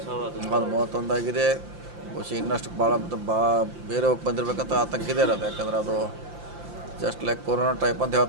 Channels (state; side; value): late; left; 5.8 ms